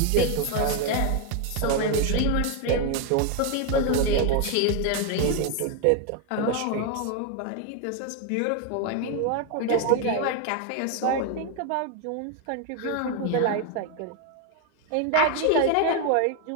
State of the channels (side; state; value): both; different; correlation 0.01